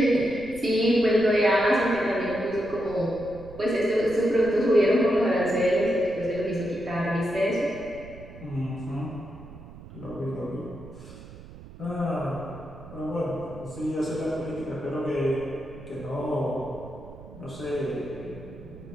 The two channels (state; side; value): noise; right; rumble, 17 dB below the sound